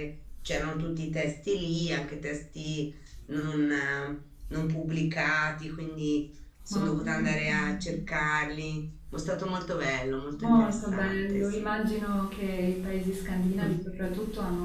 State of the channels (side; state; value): both; identical; correlation 1.00